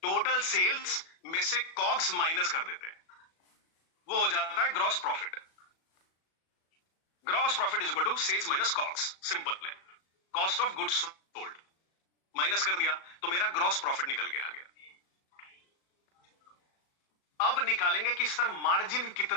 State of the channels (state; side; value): late; right; 37 ms